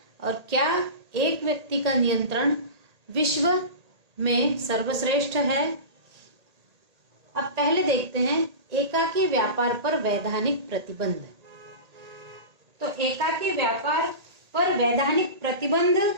और क्या एक व्यक्ति का नियंत्रण विश्व में सर्वश्रेष्ठ है। अब पहले देखते हैं एकाकी व्यापार पर वैधानिक प्रतिबंध। तो एकाकी व्यापार पर वैधानिक प्रतिबंध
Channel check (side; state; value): left; late; 1.8 ms